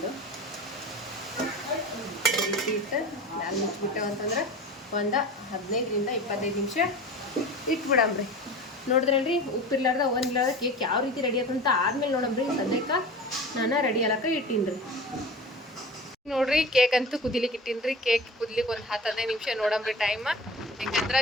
ಈ ರೀತಿ ಇಟ್ಟು ಮ್ಯಾಲೆ ಮುಚ್ಚಿಬಿಟ್ಟೆವು ಅಂತಂದ್ರೆ ಒಂದು 15ರಿಂದ 25 ನಿಮಿಷ ಇಟ್ಬಿಡಮ್ರಿ. ನೋಡಿದ್ರಲ್ರಿ, ಉಪ್ಪಿರ್ಲಾರ್ದ ಒಂದಿಲ್ಲಾರ್ದ ಕೇಕ್ ಯಾವ ರೀತಿ ರೆಡಿ ಆಯ್ತಂತ ಆದ್ಮೇಲೆ ನೋಡಮ್ರಿ. ಸದ್ಯಕ್ಕೆ ನಾನು ರೆಡಿ ಆಲಕ್ಕ ಇಟ್ಟೀನಿ. ನೋಡ್ರಿ, ಕೇಕ್ ಅಂತೂ ಕುದಿಲಿಕ್ಕೆ ಇಟ್ಟೀನಿ. ಕೇಕ್ ಕುದಿಲಿಕ್ಕೆ ಒಂದು 10-15 ನಿಮಿಷ ನೋಡಮ್ರಿ ಟೈಮ್. ಯಾಕಂದ್ರೆ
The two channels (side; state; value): both; normal; correlation 0.34